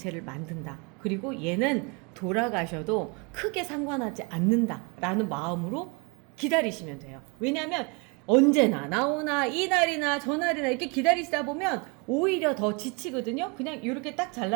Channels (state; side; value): quieter; left; 31.4 dB